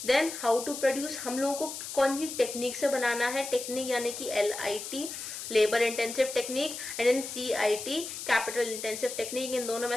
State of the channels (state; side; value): noise; left; hiss, 8 dB below the sound